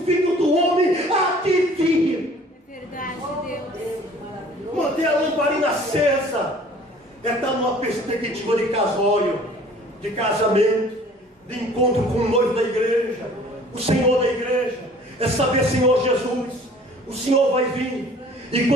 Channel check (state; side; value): normal; both; correlation 0.51